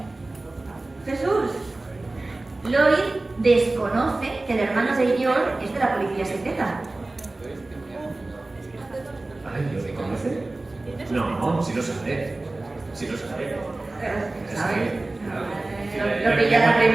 Jesús. Lloyd desconoce que el hermano de Yor es de la policía secreta. Ay, ¿lo reconoce? No, sí lo sabe. Sí lo sabe. ¿Sabes? Lo pilla la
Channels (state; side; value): quieter; left; 3.0 dB